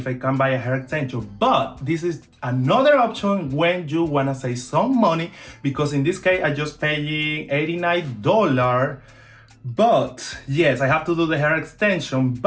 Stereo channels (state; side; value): identical; both; correlation 1.00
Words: I can buy a hair extension? But this is another option when you wanna save some money, because in this case I just paying $89. But yes, I have to do the hair extension,